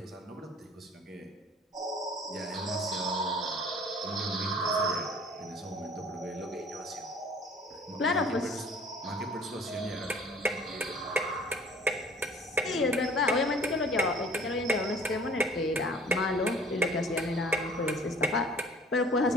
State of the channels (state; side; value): normal; both; correlation 0.51